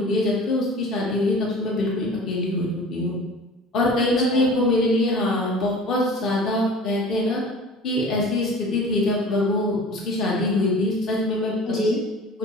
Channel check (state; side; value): normal; both; correlation 0.41